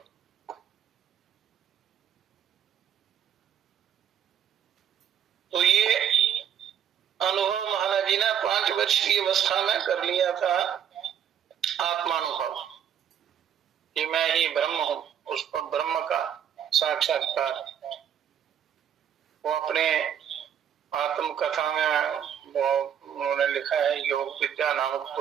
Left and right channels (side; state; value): left; quieter; 9.1 dB